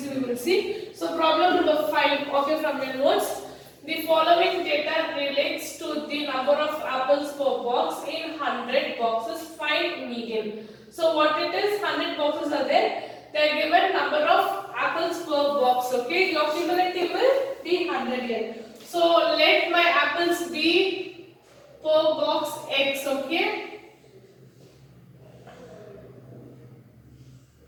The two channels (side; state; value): both; identical; correlation 1.00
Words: we will see. So problem number 5, okay, from your notes. The following data relates to the number of apples per box in 100 boxes. Find median. So what it is? 100 boxes are there. They are given number of apples per box. Okay, your cumulative will be 100 here. So let my apples be per box x. Okay,